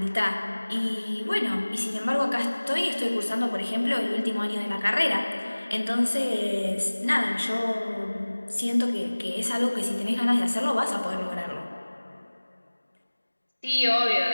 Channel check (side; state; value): both; inverted; correlation -1.00